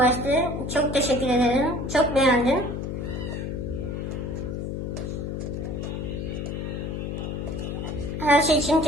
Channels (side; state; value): left; noise; hum, 4 dB below the sound